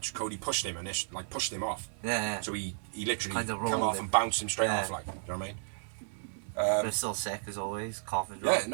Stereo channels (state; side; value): silent; left; digital silence